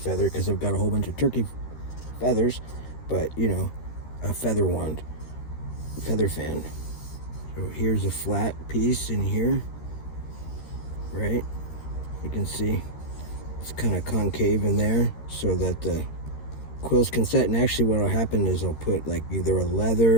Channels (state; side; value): late; right; 13 ms